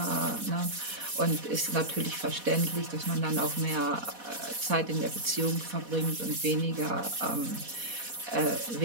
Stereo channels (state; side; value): late; left; 4.1 ms